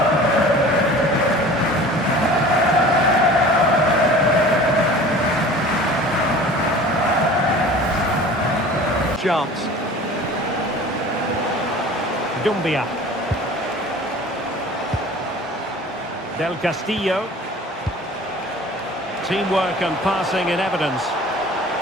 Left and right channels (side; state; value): both; normal; correlation 0.43